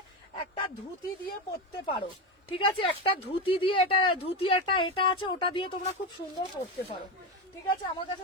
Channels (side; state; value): both; normal; correlation 0.16